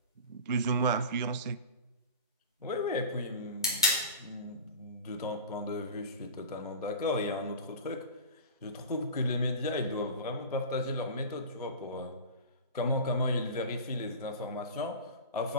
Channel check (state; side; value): inverted; both; correlation -0.31